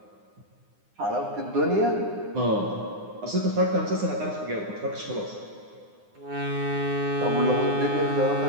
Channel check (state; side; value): late; left; 9.7 ms